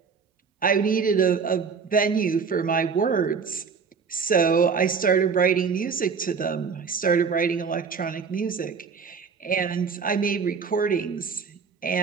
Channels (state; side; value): quieter; left; 5.7 dB